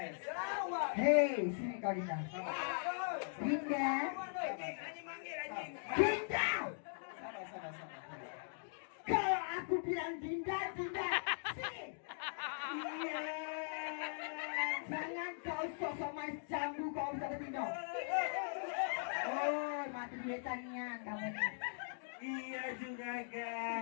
Lawan. Hei, sini kau Dinda. Dinda. Anjing manggil anjing. Dinda. Sabar. Kalau aku bilang Dinda, Dinda. Sini. Iya. Jangan kau sosok main jambu kau bisa bertindak. Oh, mati duitanian kamu nih. Iya juga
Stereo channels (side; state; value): right; silent; digital silence